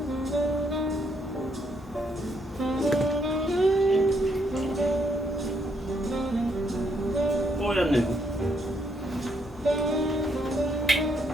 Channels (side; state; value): left; noise; hum, 20 dB below the sound